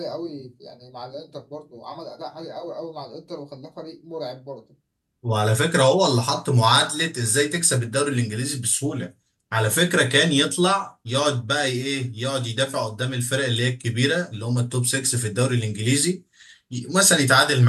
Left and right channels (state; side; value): identical; both; correlation 1.00